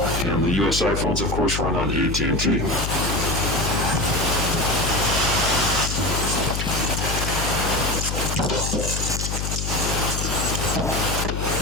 and the US iPhones, of course, run on AT&T.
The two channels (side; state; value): left; noise; hum, 2 dB below the sound